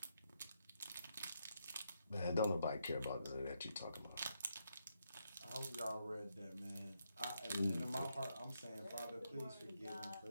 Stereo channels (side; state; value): both; inverted; correlation -0.80